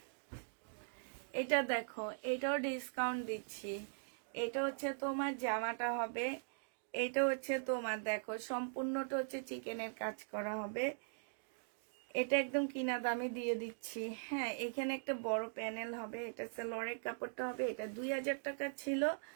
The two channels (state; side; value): silent; left; digital silence